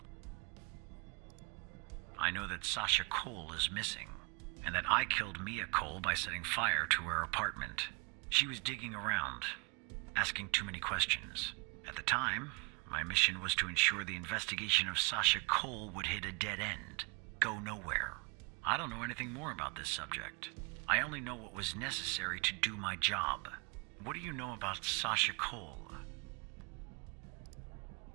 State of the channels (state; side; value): quieter; left; 31.8 dB